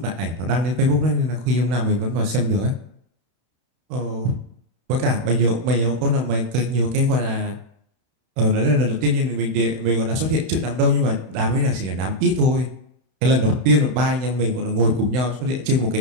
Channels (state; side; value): late; left; 32 ms